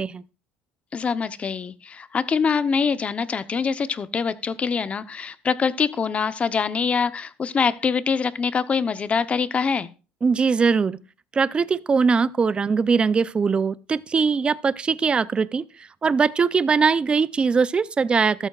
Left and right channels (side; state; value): both; normal; correlation 0.77